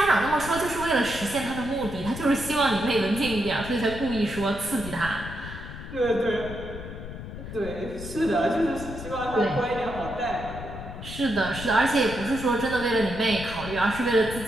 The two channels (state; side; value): noise; left; rumble, 10 dB below the sound